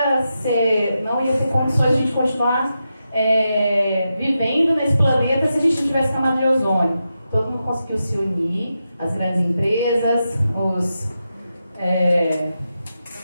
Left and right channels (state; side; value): inverted; both; correlation -0.88